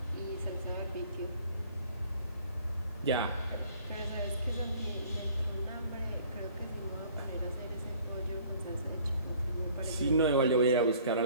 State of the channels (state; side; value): inverted; both; correlation -0.55